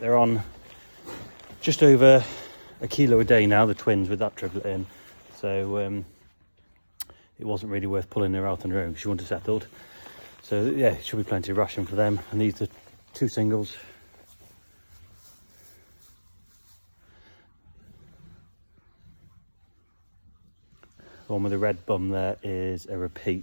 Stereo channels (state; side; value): inverted; both; correlation -1.00